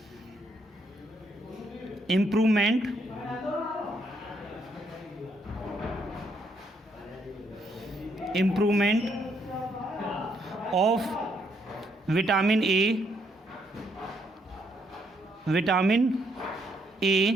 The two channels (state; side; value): normal; both; correlation 0.73